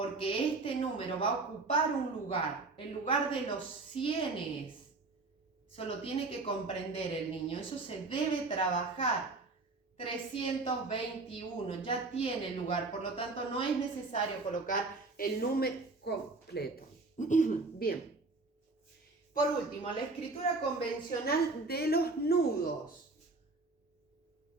este número va a ocupar un lugar, el lugar de los cienes. Eso lo tiene que comprender el niño, eso se debe trabajar. 321 ya tiene lugar, por lo tanto no es necesario colocar el número completo. Bien. Por último, la escritura convencional de los nudos.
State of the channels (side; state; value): left; quieter; 3.5 dB